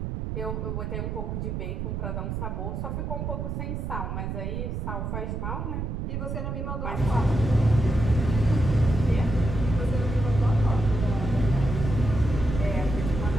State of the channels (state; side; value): noise; right; rumble, 3 dB below the sound